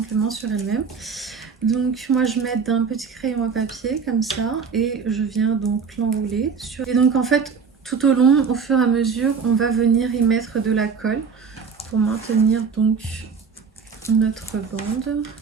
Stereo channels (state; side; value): quieter; left; 5.8 dB